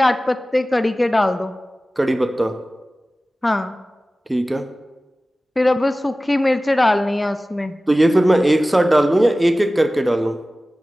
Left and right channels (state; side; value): normal; both; correlation 0.96